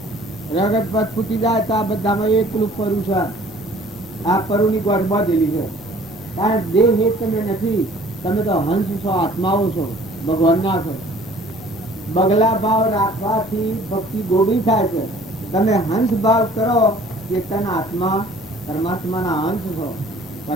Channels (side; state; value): both; normal; correlation 0.53